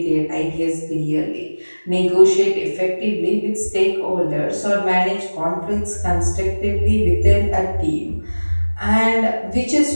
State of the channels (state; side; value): inverted; both; correlation -1.00